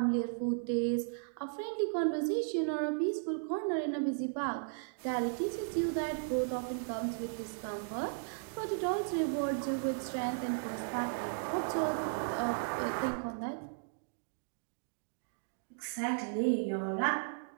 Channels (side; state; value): left; silent; digital silence